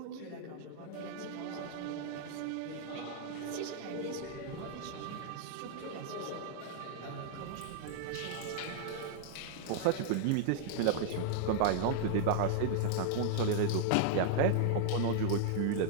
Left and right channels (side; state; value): both; different; correlation -0.01